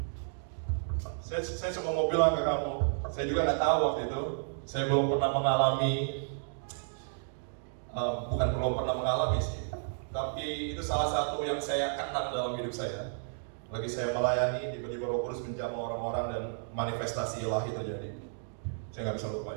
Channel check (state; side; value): silent; left; digital silence